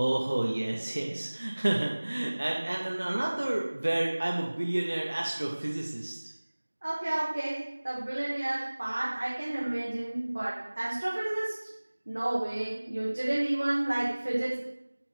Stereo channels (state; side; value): inverted; both; correlation -1.00